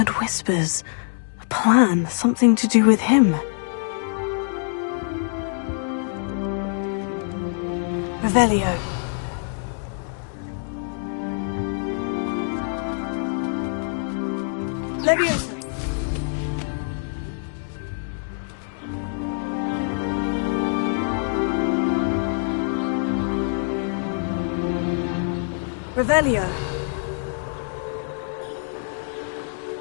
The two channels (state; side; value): silent; right; digital silence